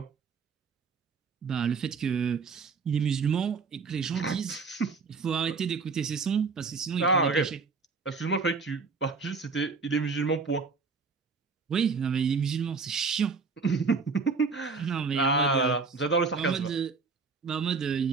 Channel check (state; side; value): quieter; left; 4.7 dB